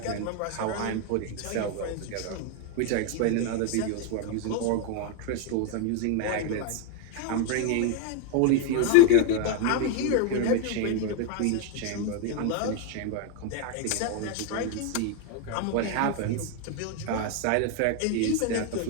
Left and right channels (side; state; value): both; different; correlation 0.01